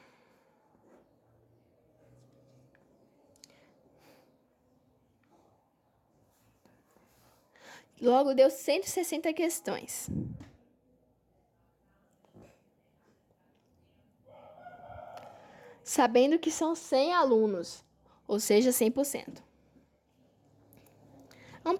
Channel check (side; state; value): both; identical; correlation 1.00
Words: Logo, deu 160 questões. Sabendo que são 100 alunos, ou seja, 100%. Vamos